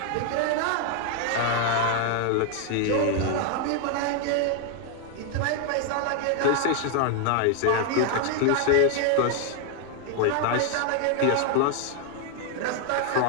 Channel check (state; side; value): different; both; correlation 0.00